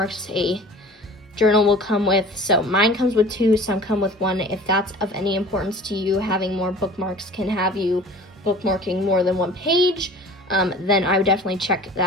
a journal will come with. So mine comes with 2, some come with 1. If that's of any importance to you, having more bookmarks can have you bookmarking more than 1 page, then I would definitely check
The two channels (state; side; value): normal; both; correlation 0.44